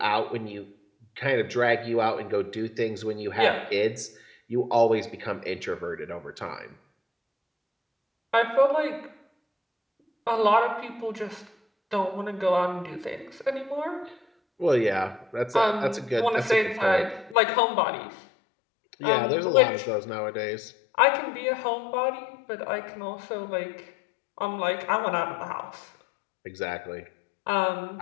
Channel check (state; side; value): drops out; right; at 17.4 s